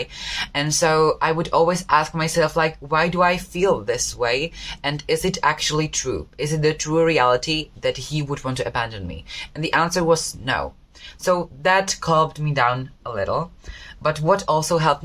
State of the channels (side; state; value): both; identical; correlation 1.00